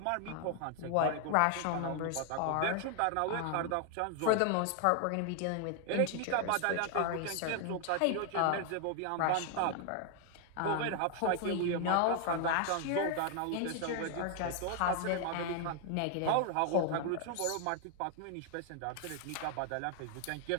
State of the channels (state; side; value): different; both; correlation 0.00